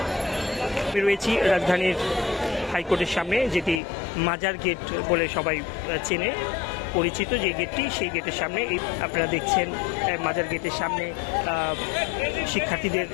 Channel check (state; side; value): drops out; right; at 3.8 s